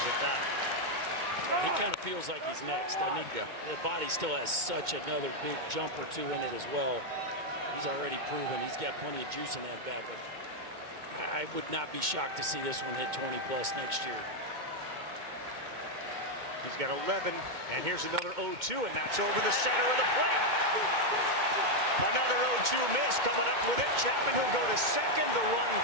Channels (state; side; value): late; left; 2.2 ms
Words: at that. He kind of feels like he's next, doesn't he? Yeah. The body still has such another big jump or two in it as well. He's already proven he's got plenty of juice in that bat, but I would not be shocked to see this one hit 20 plus next year. He's got 11, and here's another 0-2, and that's over the center of the plate. Another 0-2 miss coming up with it. Chapman who'll go to second. The run